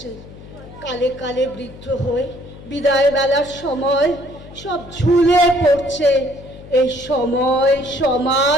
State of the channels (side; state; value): left; noise; hum, 18 dB below the sound